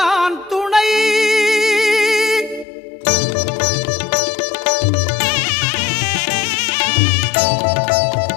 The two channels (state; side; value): drops out; right; at 2.7 s